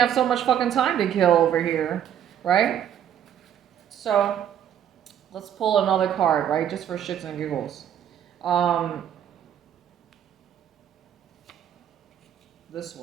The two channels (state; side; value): quieter; left; 9.7 dB